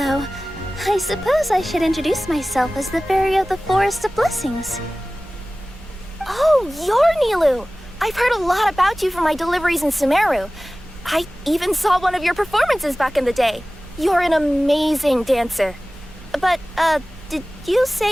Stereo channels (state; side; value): normal; both; correlation 0.97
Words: I suppose I should introduce myself as the Fairy of the Forest of Blessings. Oh, you're Nilu! I've heard a lot about you from my deliveries in Sumeru. I even saw one of your performances back in the day. You're an amazing dancer. But, did you